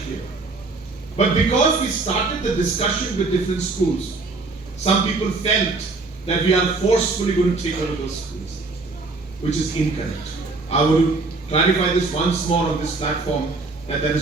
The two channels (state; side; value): quieter; left; 3.6 dB